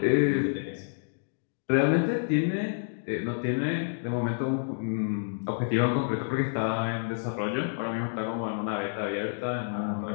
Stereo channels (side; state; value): right; silent; digital silence